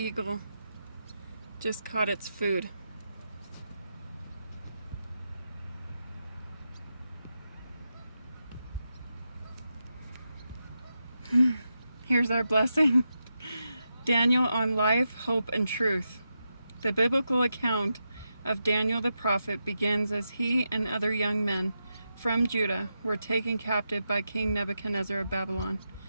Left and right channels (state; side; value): inverted; both; correlation -0.87